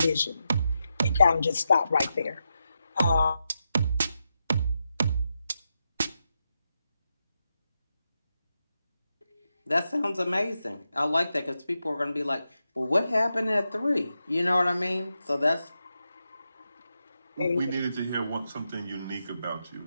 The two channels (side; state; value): both; inverted; correlation -0.87